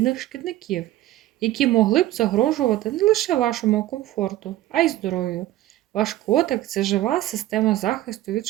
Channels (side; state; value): left; quieter; 15.0 dB